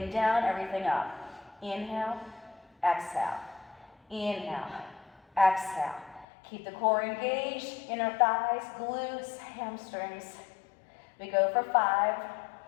down, everything up. Inhale, exhale. Inhale, exhale. Keep the core engaged, inner thighs, glutes, hamstrings. We go for 5,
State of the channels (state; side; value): drops out; right; at 6.2 s